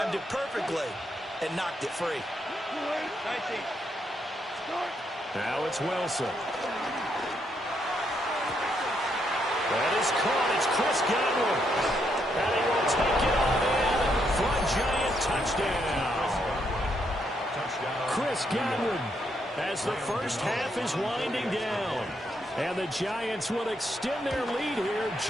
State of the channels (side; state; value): both; normal; correlation 0.77